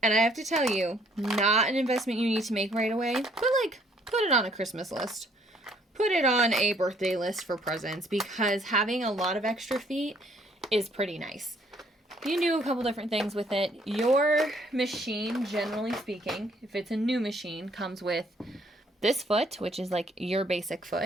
And I have to tell you, not an investment you need to make right away, but, put it on a Christmas list. Put it on a birthday list for presents, because having a lot of extra feet is pretty nice. You can do a couple different things with it. Your machine, generally speaking, if it's a new machine, comes with this foot, which is your basic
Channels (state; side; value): normal; both; correlation 0.64